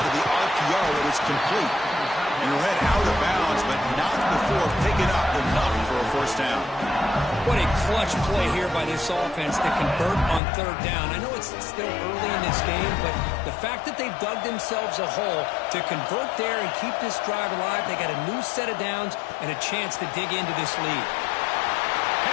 of the RPO, and it's complete. And he'll head out of bounds, but not before picking up enough for a first down. What a clutch play here by this offense to convert on 3rd down. I know it's still early in this game, but the fact that they've dug themselves a hole to convert there and keep this drive alive, they got a new set of downs and a chance to dig into this lead.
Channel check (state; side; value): drops out; right; at 10.4 s